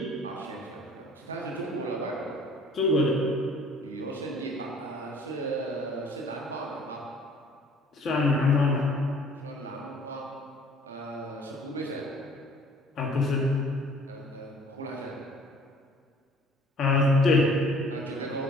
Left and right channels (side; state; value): both; normal; correlation 0.53